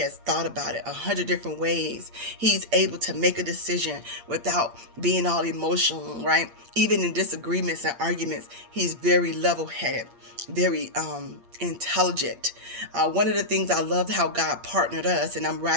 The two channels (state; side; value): late; left; 8.6 ms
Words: thought about it 100 different ways. He's able to make a decision without being all emotional, right? Even in disagreements and arguments, he's very level-headed, very intelligent. One of the things I loved how God partnered us, and I'm